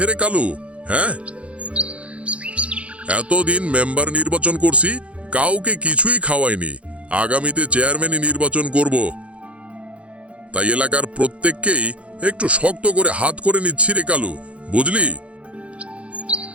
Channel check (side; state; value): left; late; 0.062 ms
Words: রে কালু? হ্যাঁ, এতদিন মেম্বার নির্বাচন করছি, কাউকে কিছুই খাওয়াইনি। আগামীতে চেয়ারম্যানই নির্বাচন করব, তাই এলাকার প্রত্যেককেই একটু শক্ত করে হাত করে নিচ্ছি রে কালু, বুঝলি?